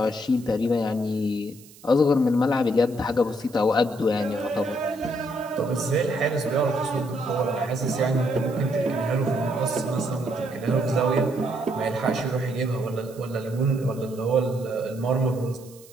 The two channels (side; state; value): right; noise; hiss, 23 dB below the sound